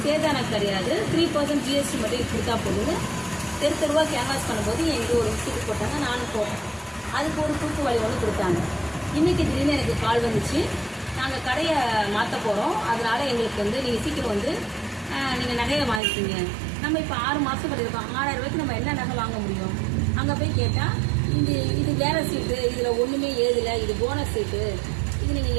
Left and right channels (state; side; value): drops out; left; at 16.0 s